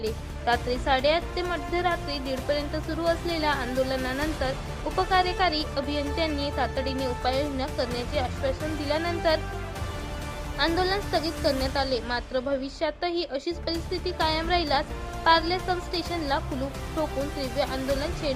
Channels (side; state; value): both; identical; correlation 1.00